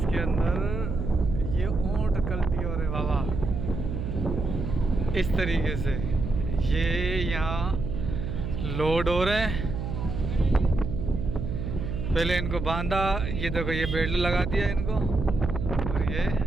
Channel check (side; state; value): right; noise; hum, 4 dB below the sound